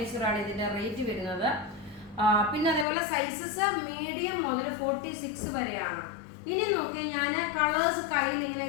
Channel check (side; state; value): right; drops out; at 2.9 s